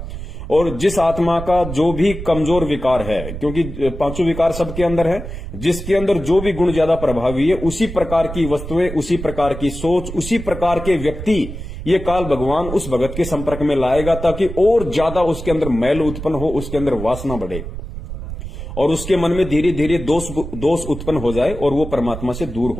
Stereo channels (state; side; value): noise; right; rumble, 9 dB below the sound